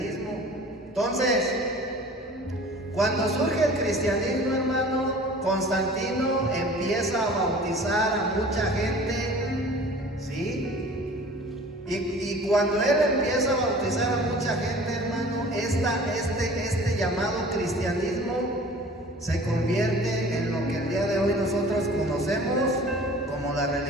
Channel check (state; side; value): normal; both; correlation 0.45